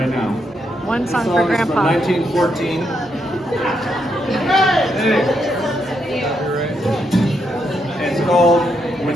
now. One This song for song is Grandpa. from 1914. Hey. It's called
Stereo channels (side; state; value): both; normal; correlation 0.79